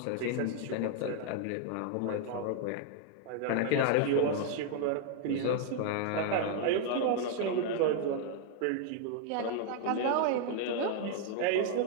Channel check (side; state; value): both; different; correlation 0.00